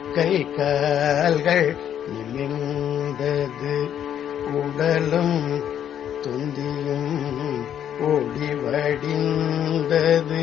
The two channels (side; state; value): right; quieter; 9.7 dB